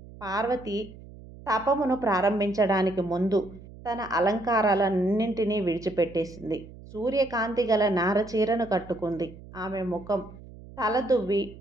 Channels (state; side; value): noise; right; hum, 18 dB below the sound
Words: పార్వతి తపమును ప్రారంభించడానికి ముందు తన అలంకారాలన్నింటినీ విడిచిపెట్టేసింది. సూర్యకాంతి గల నారచీరను కట్టుకుంది. ఆమె ముఖం తలదువ్వి